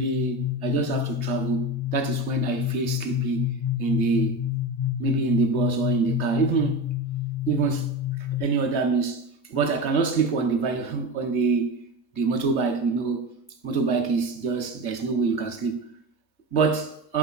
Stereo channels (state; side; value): late; right; 3.2 ms